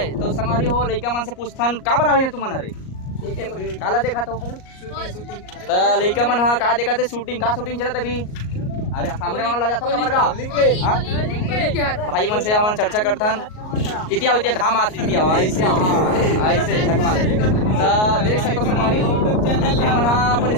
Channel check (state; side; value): late; right; 38 ms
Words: तो संगवारी हो लइका मन से पूछथन का बरा हुई तुम मन रे काला देखा तो लइका मन हाँ का देखा थे शूटिंग का शूटिंग चला अभी। अरे सामने वाला जाता कमर का भाई मन से हम चर्चा करथन इतिया इतिया घाम आती इतिया ऐसे ऐसे चकमा तो देख सकते हमारी हो मन अपन